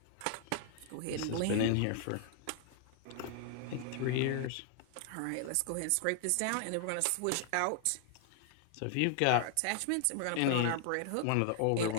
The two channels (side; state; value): both; different; correlation 0.00